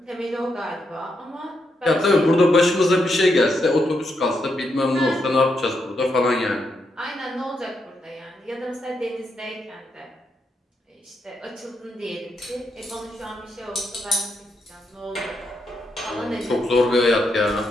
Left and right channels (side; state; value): both; normal; correlation 0.81